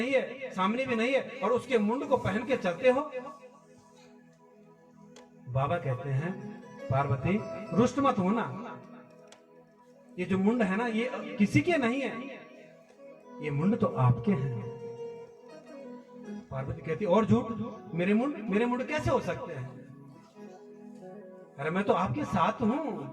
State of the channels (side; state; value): both; identical; correlation 1.00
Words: है, सामने भी नहीं है, और उसके मुंड को पहन के चलते हो। बाबा कहते हैं पार्वती रुष्ट मत होना, ये जो मुंड है ना, ये किसी के नहीं है, ये मुंड तो आपके हैं। पार्वती कहती और झूठ, मेरे मुंड कैसे हो सकते हैं? अरे मैं तो आपके साथ हूं।